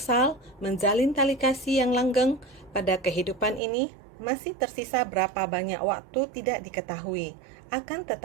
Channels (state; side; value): drops out; left; at 3.6 s